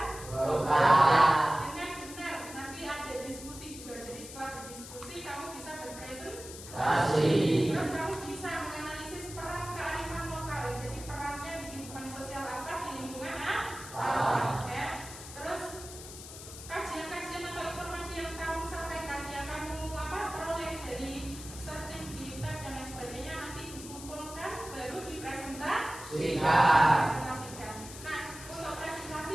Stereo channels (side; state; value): left; noise; hiss, 13 dB below the sound